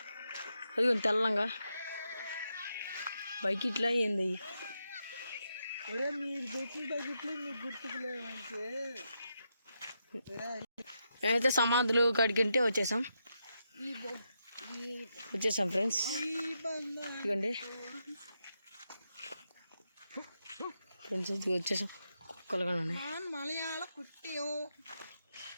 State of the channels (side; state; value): both; inverted; correlation -0.84